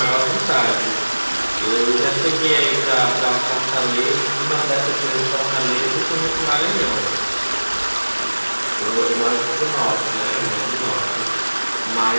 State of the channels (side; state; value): both; inverted; correlation -1.00